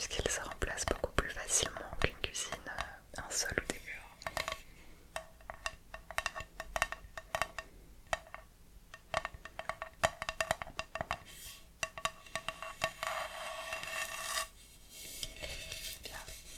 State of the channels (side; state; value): both; identical; correlation 1.00